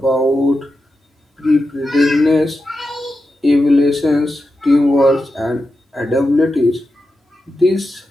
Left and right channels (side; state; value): both; normal; correlation 0.90